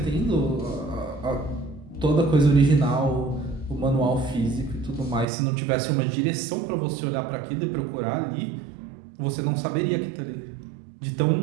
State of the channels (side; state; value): left; drops out; at 5.2 s